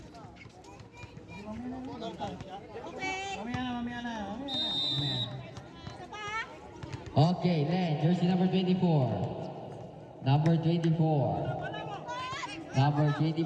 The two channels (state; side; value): identical; both; correlation 1.00